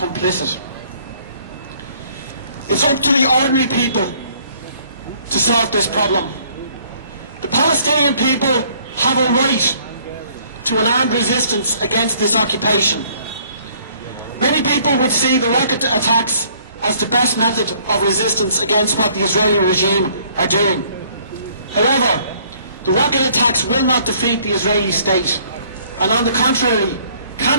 It's up to the ordinary people to solve this problem. The Palestinian people have a right to an armed resistance against this occupation. Many people would see the rocket attacks as the best method of resistance against what the Israeli regime are doing. However, the rocket attacks will not defeat the Israeli state, and on the contrary,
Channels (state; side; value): inverted; both; correlation -0.61